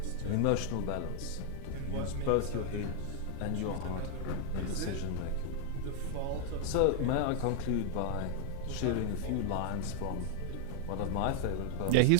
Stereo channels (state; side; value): different; both; correlation 0.00